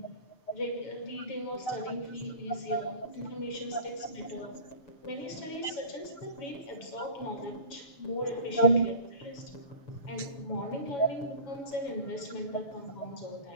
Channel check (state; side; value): late; right; 6.7 ms